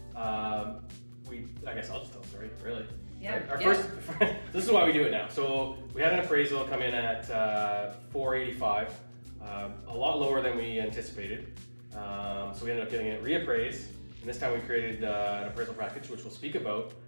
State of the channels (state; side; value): inverted; both; correlation -1.00